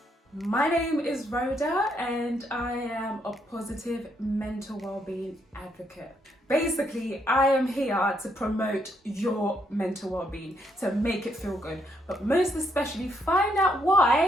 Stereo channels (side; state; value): both; normal; correlation 0.75